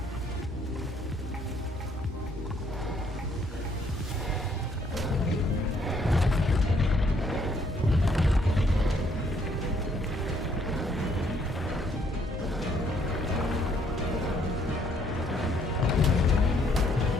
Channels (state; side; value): normal; both; correlation 0.67